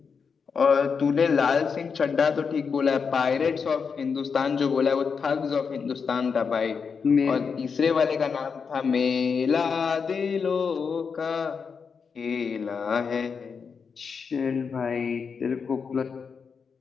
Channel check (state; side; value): quieter; right; 5.8 dB